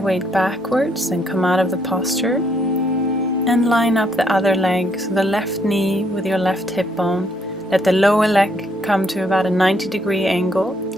backwards and come out of the posture and line up the other leg, so the left knee with your left hip bone. Let the lower leg come to about a 90-degree angle,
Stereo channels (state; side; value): normal; both; correlation 0.71